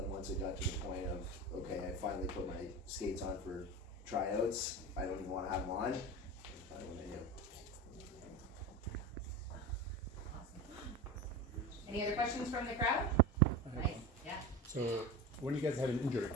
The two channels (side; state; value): both; normal; correlation 0.26